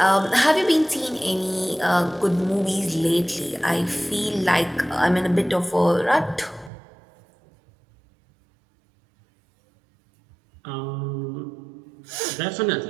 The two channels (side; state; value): left; drops out; at 6.7 s